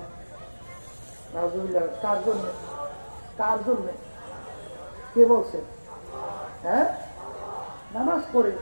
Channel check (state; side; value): inverted; both; correlation -1.00